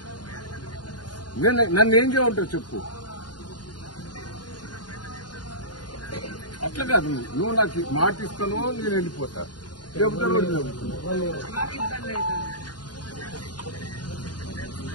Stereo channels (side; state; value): right; late; 0.70 ms